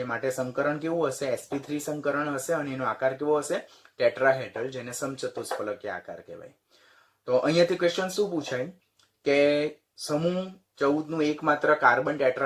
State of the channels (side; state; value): both; identical; correlation 1.00